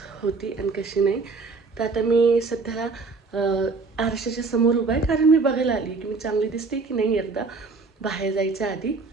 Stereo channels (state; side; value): quieter; left; 4.1 dB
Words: होती आणि कशी नाही. तर आता मी सध्याला आरशाच्या समोर उभा आहे, कारण मी बघायला आली की मी चांगली दिसते की नाही एकदा बाहेर जायच्या आधी.